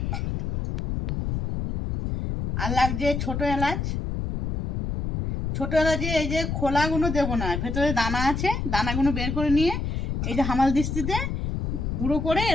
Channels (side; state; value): left; noise; rumble, 2 dB below the sound